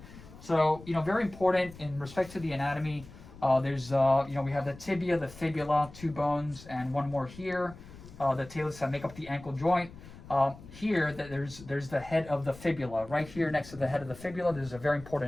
So, very important in respect to the anatomy. There's, we have the tibia, the fibula, 2 bones, and 1 more here. The talus that make up the ankle joint. Here, there's the head of the fibula. Right here next to the head of the fibula, there's a very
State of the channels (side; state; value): left; noise; rumble, 18 dB below the sound